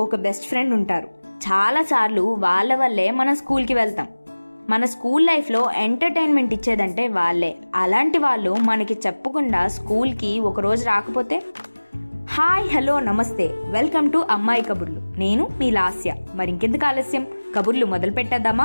బెస్ట్ ఫ్రెండ్ ఉంటారు. చాలాసార్లు వాళ్ళ వల్లే మనం స్కూల్కి వెళ్తాం. మన స్కూల్ లైఫ్లో ఎంటర్టైన్మెంట్ ఇచ్చేదంటే వాళ్ళే. అలాంటి వాళ్ళు మనకి చెప్పకుండా స్కూల్కి ఒకరోజు రాకపోతే హాయ్ హలో నమస్తే, వెల్కమ్ టు అమ్మాయి కబుర్లు. నేను మీ లాస్య. మరి ఇంకెందుకు ఆలస్యం, కబుర్లు మొదలు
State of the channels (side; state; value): both; inverted; correlation -1.00